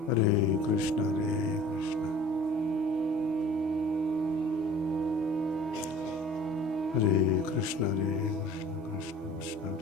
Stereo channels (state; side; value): normal; both; correlation 0.47